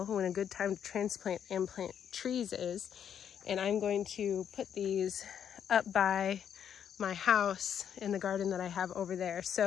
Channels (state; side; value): quieter; right; 8.7 dB